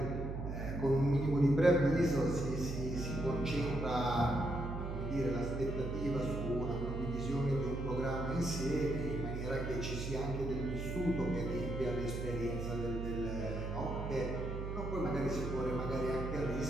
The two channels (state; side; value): noise; right; hum, 5 dB below the sound